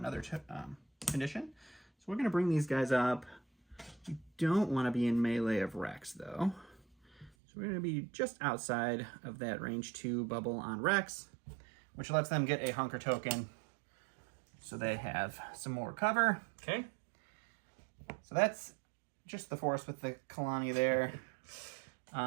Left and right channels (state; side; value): drops out; left; at 7.3 s